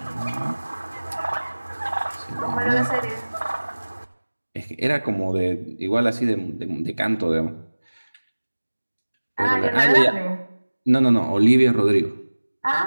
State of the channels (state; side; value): inverted; both; correlation -1.00